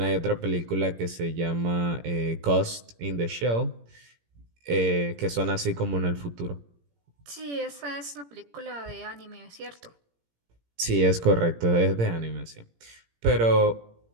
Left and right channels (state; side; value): late; left; 17 ms